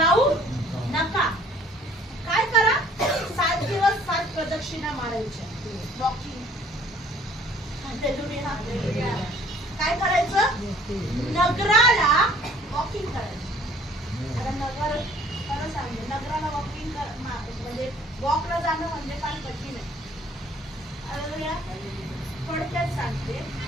नका. काय करा? 7 दिवस 7 प्रदक्षिणा मारायच्या. वॉकिंग. काय करायचं? नगराला वॉकिंग करायचं. आता नगर खरं सांगते नगराला वॉकिंग म्हणजे वॉकला जाणं म्हणजे फार कठीण आहे. थोडक्यात सांगते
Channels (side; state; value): both; normal; correlation 0.56